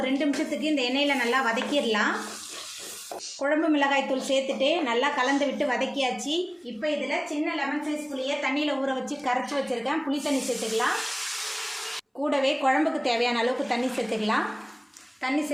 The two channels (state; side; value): identical; both; correlation 1.00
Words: 2 நிமிஷத்துக்கு இந்த எண்ணெயில் நல்லா வதக்கிடலாம். குழம்பு மிளகாய் தூள் சேர்த்துட்டு நல்லா கலந்து விட்டு வதக்கியாச்சு. இப்போ இதில் சின்ன லெமன் சைஸ் புளியை தண்ணியில் ஊற வச்சு கரைச்சி வச்சுருக்கேன். புளி தண்ணி சேர்த்துக்கலாம். கூடவே குழம்புக்கு தேவையான அளவுக்கு தண்ணி சேர்த்துக்கலாம். தண்ணி